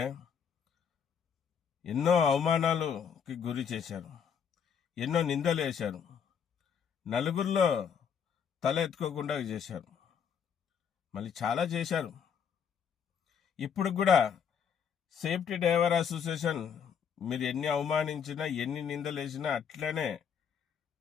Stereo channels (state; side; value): quieter; right; 7.4 dB